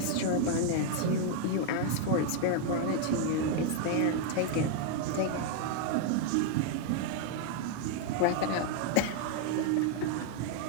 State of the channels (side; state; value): both; different; correlation 0.00